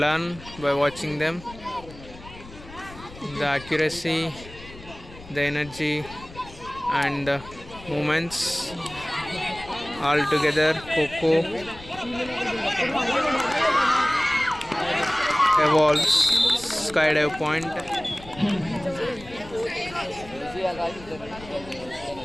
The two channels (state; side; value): noise; left; rumble, 17 dB below the sound